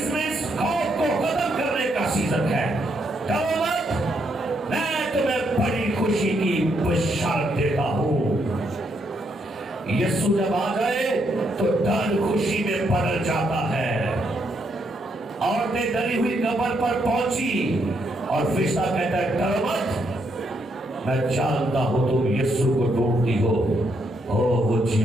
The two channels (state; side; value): normal; both; correlation 0.76